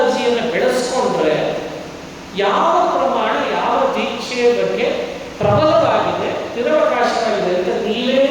ಬೆಳೆಸ್ಕೊಂಡ್ರೆ ಯಾವ ಪ್ರಮಾಣ ಯಾವ ದೀಕ್ಷೆಯ ಬಗ್ಗೆ ಪ್ರಬಲವಾಗಿದೆ, ನಿರವಕಾಶವಾಗಿದೆ ಅಂತ ನೀವೇ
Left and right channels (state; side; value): identical; both; correlation 1.00